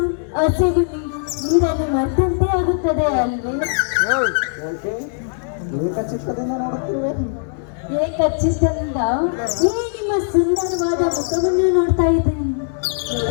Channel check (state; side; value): silent; right; 66 dB below the other